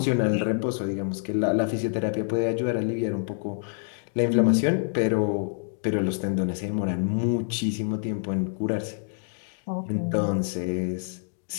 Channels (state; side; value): silent; right; digital silence